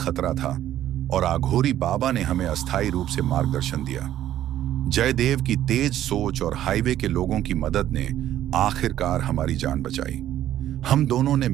था और आघोरी बाबा ने हमें अस्थायी रूप से मार्गदर्शन दिया। जयदेव की तेज सोच और हाईवे के लोगों की मदद ने आखिरकार हमारी जान बचाई। हम दोनों ने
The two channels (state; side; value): quieter; left; 12.2 dB